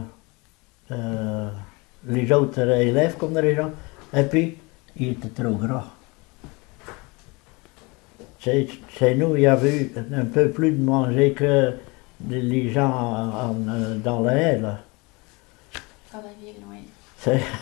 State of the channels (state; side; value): quieter; right; 26.9 dB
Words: les autres élèves, comme les gens. Et puis, ils étaient trop gras. Chez nous, il y avait eu un peu plus de manger que les gens dans la haie, là. Dans la ville, oui. C'est-